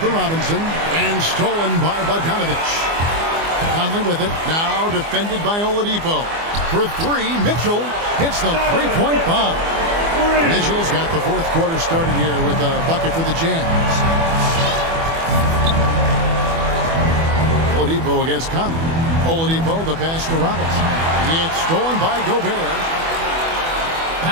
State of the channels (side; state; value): left; late; 24 ms